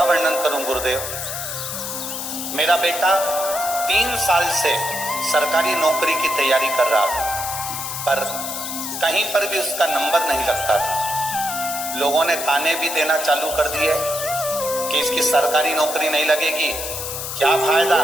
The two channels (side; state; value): left; noise; hiss, 5 dB below the sound